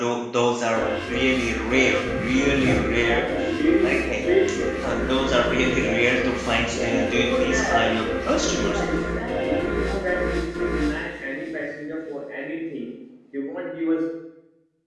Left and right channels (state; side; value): identical; both; correlation 1.00